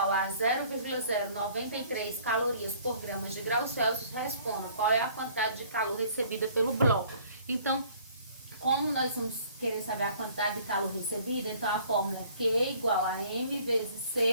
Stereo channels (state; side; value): inverted; both; correlation -0.56